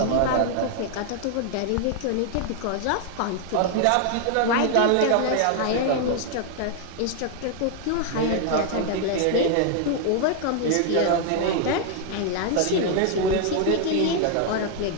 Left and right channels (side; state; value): both; different; correlation 0.00